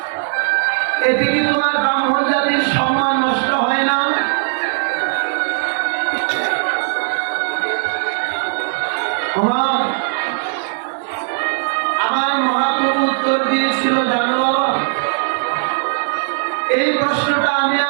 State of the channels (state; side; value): silent; left; digital silence